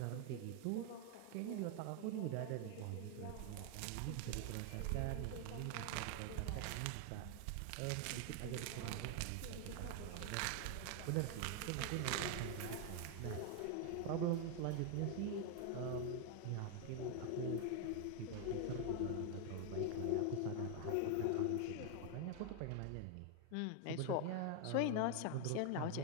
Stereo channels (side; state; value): both; different; correlation 0.00